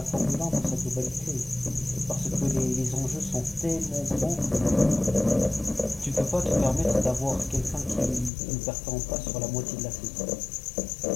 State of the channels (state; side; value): drops out; right; at 8.3 s